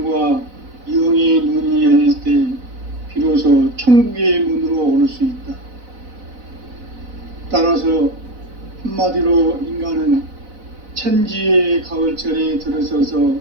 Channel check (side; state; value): left; late; 4.0 ms